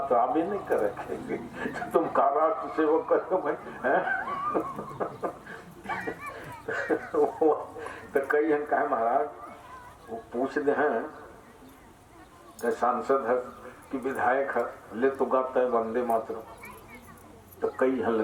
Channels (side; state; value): both; identical; correlation 1.00